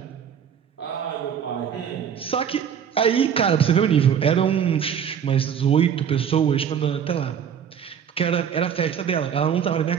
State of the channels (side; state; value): left; quieter; 8.1 dB